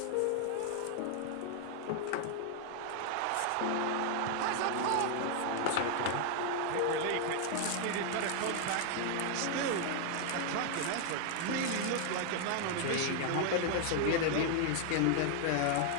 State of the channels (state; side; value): different; both; correlation 0.00